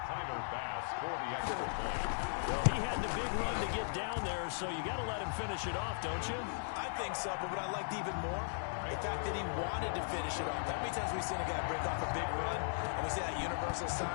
Tyler Bass for the extra point. Well, he had the big run to get down there, so you got to let him finish it off, don't you? I think so, but what I liked even more, the fact that he wanted to finish it off. How many times we've seen a guy break off a big run, and we see that universal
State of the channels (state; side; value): silent; right; digital silence